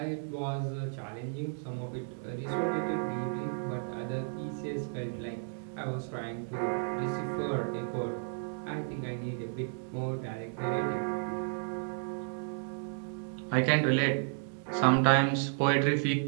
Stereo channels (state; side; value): silent; left; digital silence